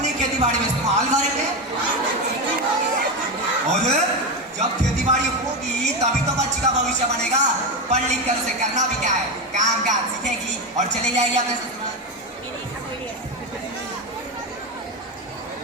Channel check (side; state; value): both; normal; correlation 0.14